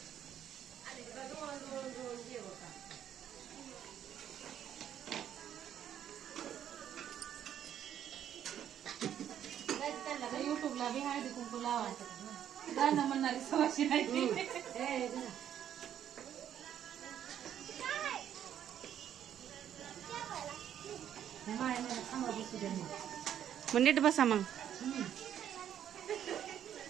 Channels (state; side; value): quieter; left; 10.1 dB